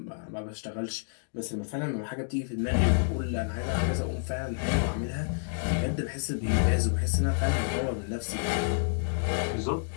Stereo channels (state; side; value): silent; right; digital silence